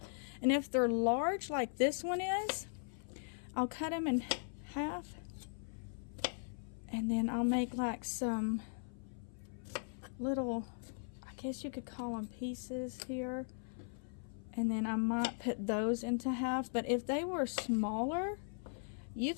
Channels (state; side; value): silent; right; 52 dB below the other